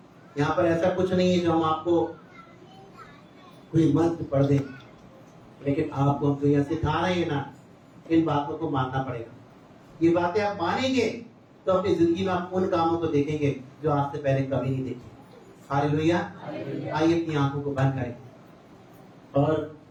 यहाँ पर ऐसा कुछ नहीं है जो हम आपको कोई मंत्र पढ़ दें, लेकिन आपको हम तो यह सिखा रहे हैं ना, इन बातों को मानना पड़ेगा। ये बातें आप मानेंगे तो अपनी जिंदगी में आप उन कामों को देखेंगे जो आज से पहले कभी नहीं देखे। हालेलुया। आइए अपनी आंखों को बंद करें और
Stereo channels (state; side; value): identical; both; correlation 1.00